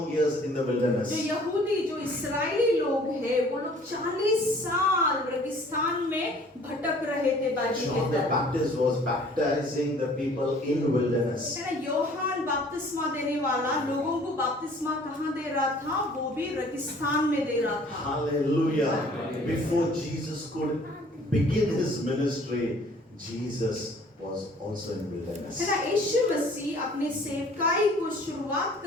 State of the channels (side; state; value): both; normal; correlation 0.53